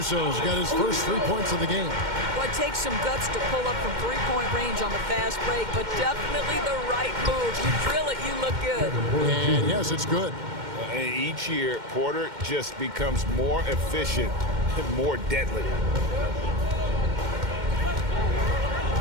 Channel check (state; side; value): late; left; 2.1 ms